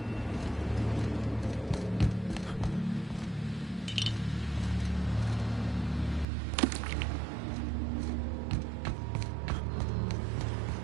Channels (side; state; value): left; drops out; at 6.2 s